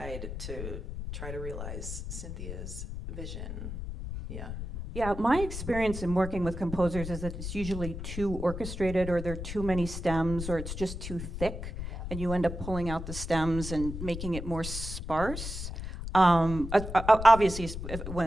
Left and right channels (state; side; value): noise; left; rumble, 7 dB below the sound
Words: to try to realize Cynthia's vision. Yeah. Yeah, my experience in working with composers is that it's usually too orchestrated, or there are too many stems, or it's just too thick, and you end up pulling out the stems and making it more sparse. Obviously,